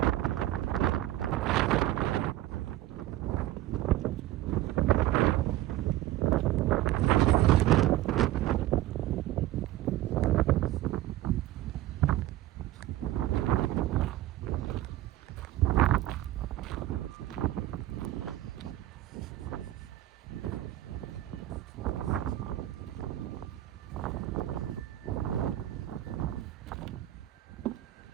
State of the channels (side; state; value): left; quieter; 14.8 dB